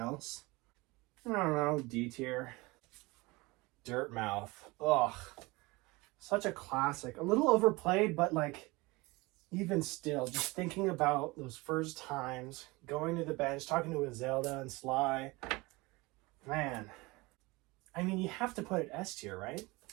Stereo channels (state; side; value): quieter; left; 23.3 dB